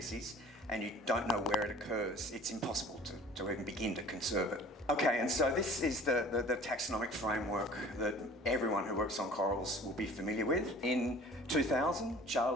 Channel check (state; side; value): normal; both; correlation 0.46